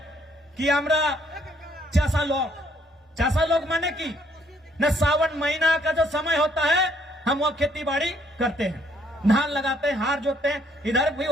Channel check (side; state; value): both; normal; correlation 0.67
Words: कि আমরা चासा लोग माने की न, सावन महीना का जो समय होता है हम वो खेती बाड़ी करते हैं, धान लगाते हैं, हार जोतते हैं। इधर भी